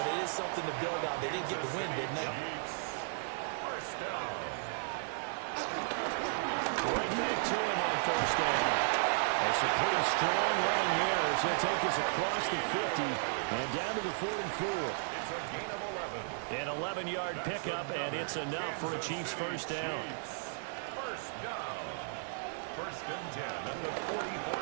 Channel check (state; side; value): silent; left; digital silence